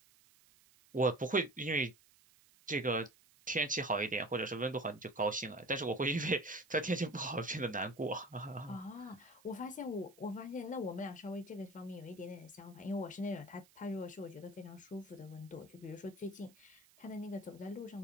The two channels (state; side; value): noise; right; hiss, 27 dB below the sound